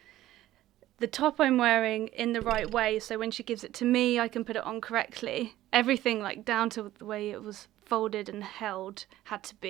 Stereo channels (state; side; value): quieter; left; 14.6 dB